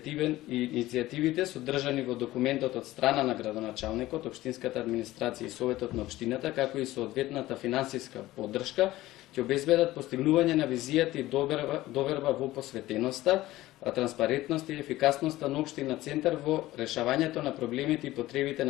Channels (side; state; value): right; quieter; 16.7 dB